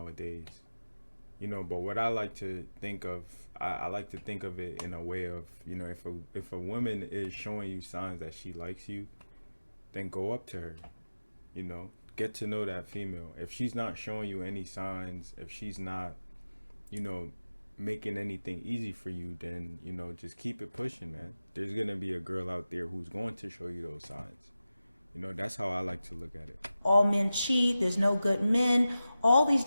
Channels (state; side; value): inverted; both; correlation -0.95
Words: You know, but what I like to think of, I like to think of it in a way of, you know, if a woman is showing you signs that she likes you, then go up to her. You know, get to know that female. If she's not showing you any signs, if she's not, you know, making anything easy for you, then, you know, just keep it pushing, man. There's gonna be a girl out there who's going to show you those signs. You know, that's how I like to look at it. All men cheat, there's no good men, all these